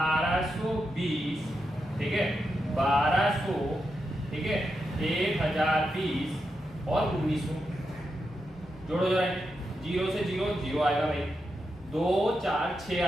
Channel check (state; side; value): normal; both; correlation 0.86